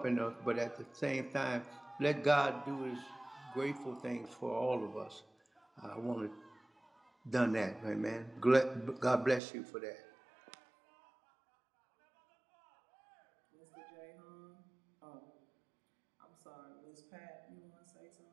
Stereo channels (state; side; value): drops out; left; at 9.4 s